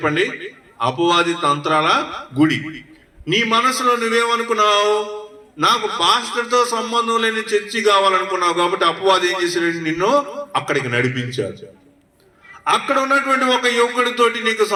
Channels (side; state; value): both; identical; correlation 1.00